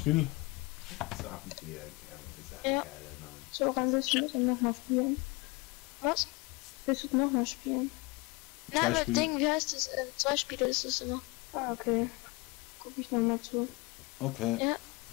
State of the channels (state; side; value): quieter; right; 25.0 dB